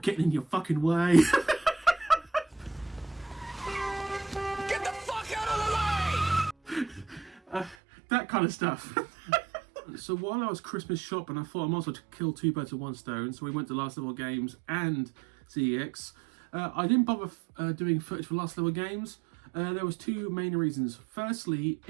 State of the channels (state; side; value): drops out; left; at 7.8 s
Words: in your fucking way. Get the fuck out of the way! That kind of stuff. So while I was Christmas shopping, I thought I might as well kill two birds with one stone. So we went to Last Level Games and CEX. I didn't bother doing footage for Last Level Games. There was two main reasons. Firstly,